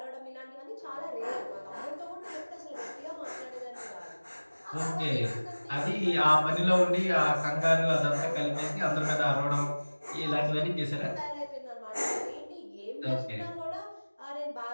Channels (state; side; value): inverted; both; correlation -1.00